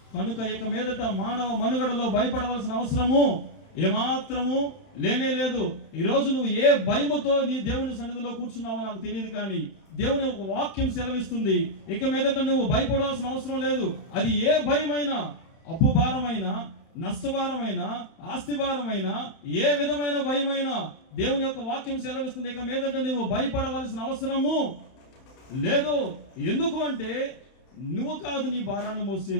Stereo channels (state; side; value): late; right; 31 ms